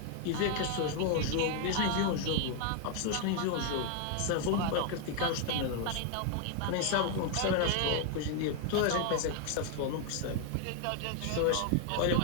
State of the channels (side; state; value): both; different; correlation 0.00